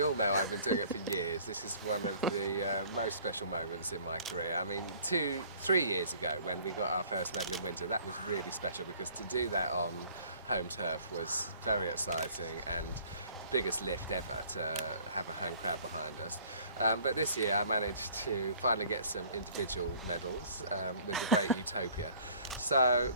know I've been doing it for years. This is one of the most special moments in my career. I mean, 3 years ago when we got our first medal in winter, that was really special because to do that on home turf was very exciting and the biggest lift ever to have a home crowd behind us. But this year I managed to finally get some individual medals with the great Utopia. So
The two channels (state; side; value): inverted; both; correlation -0.54